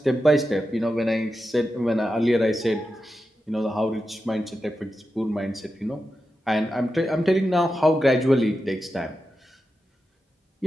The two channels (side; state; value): both; normal; correlation 0.90